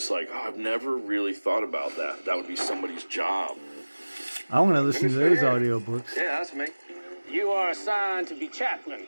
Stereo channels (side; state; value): both; inverted; correlation -1.00